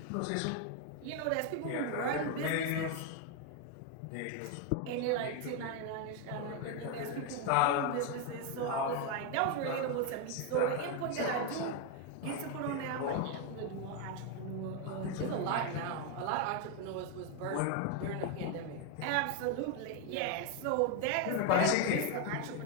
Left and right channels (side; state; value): both; different; correlation 0.01